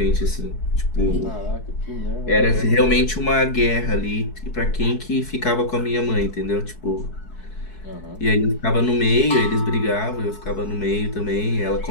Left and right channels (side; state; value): right; late; 4.6 ms